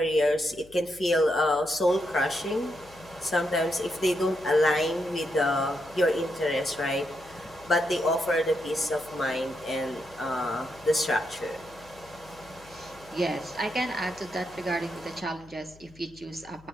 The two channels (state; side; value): noise; left; hum, 24 dB below the sound